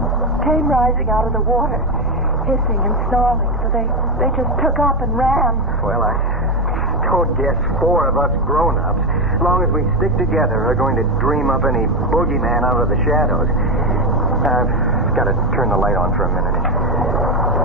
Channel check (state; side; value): normal; both; correlation 0.11